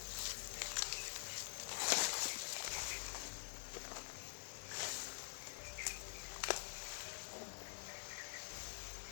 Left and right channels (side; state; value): right; silent; digital silence